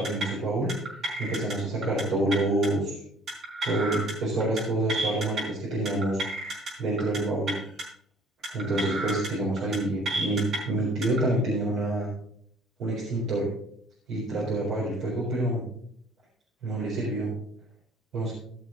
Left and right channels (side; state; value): both; normal; correlation 0.54